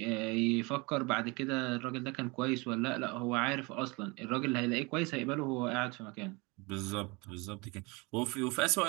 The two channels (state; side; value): quieter; left; 26.8 dB